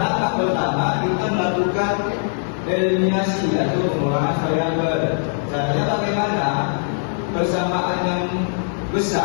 pertama kita melakukan eliminasi atau pengurangan variabel. Caranya bagaimana? Persamaan yang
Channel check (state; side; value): silent; right; 61 dB below the other